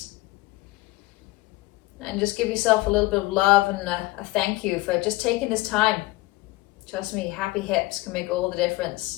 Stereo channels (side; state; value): right; quieter; 20.6 dB